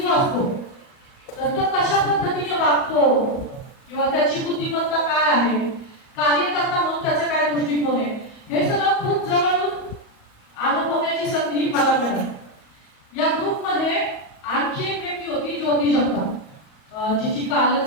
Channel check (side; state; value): right; late; 38 ms